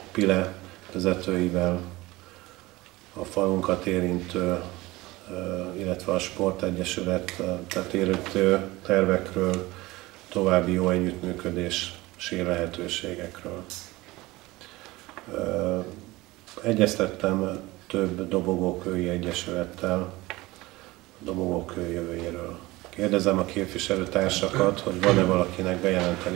Pile vezetőivel, a falunkat érintő, illetve a Sportegyesület érintő tervekről, további jó együttműködési lehetőségekről. Egyeztettem több dobogókői egyesülettel, a dobogókő jövőjéről. Kérdezem a képviselőtársakat, hogy van-e valakinek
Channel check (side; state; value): left; quieter; 20.1 dB